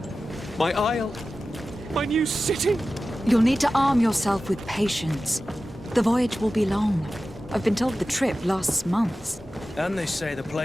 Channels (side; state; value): both; normal; correlation 0.94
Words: My isle, my new city. You'll need to arm yourself with patience. The voyage will be long. I've been told the trip lasts months. And they say the